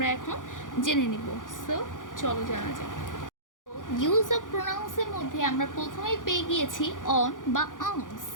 এখন জেনে নিব। সো চলো জানা যাক। ইউজ অফ প্রোনাউন্সের মধ্যে আমরা প্রথমেই পেয়ে গিয়েছি অন বা অনস।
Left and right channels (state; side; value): late; right; 0.88 ms